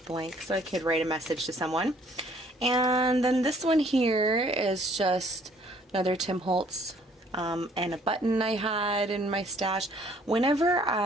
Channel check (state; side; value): normal; both; correlation 0.60